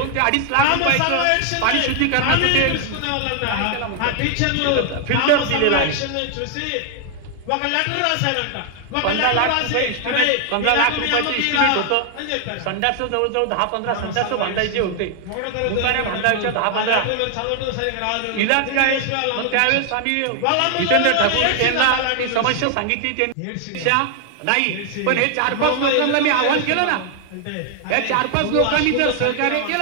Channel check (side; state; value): both; different; correlation 0.00